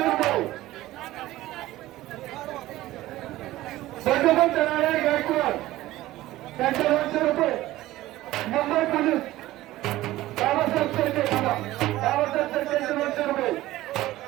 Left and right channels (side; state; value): left; quieter; 16.3 dB